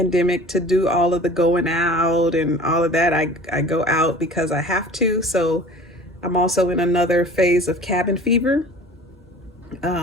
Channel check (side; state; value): both; normal; correlation 0.43